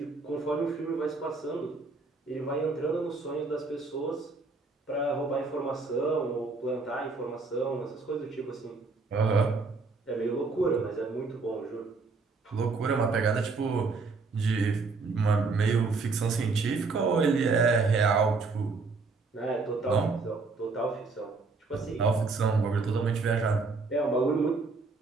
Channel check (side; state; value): left; quieter; 4.1 dB